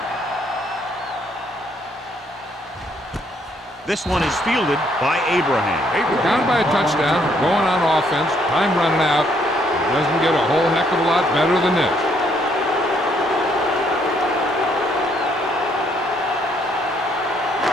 This one is fielded by Abraham. Down by a touchdown, going on offense, time running out. It doesn't get a whole heck of a lot better than this.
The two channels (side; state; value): both; normal; correlation 0.69